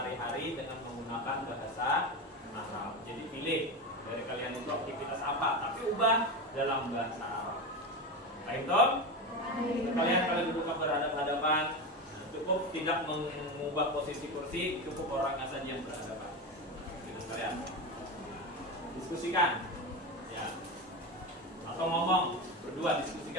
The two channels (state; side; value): normal; both; correlation 0.20